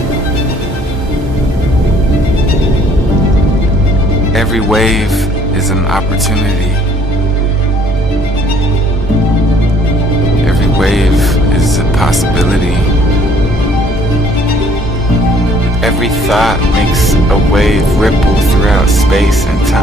Every wave is an opportunity. Every wave is a possibility. Every thought makes a wave ripple throughout space and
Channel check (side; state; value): both; normal; correlation 0.60